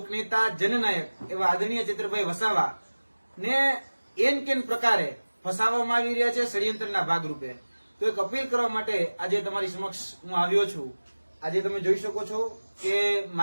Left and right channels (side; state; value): both; inverted; correlation -1.00